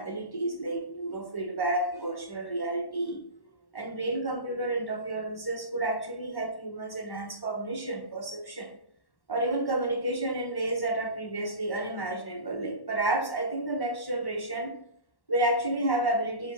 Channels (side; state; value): right; late; 1.1 ms